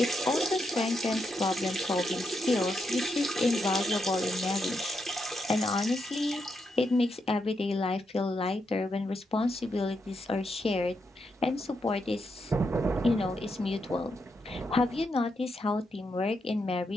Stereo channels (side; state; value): both; normal; correlation 0.82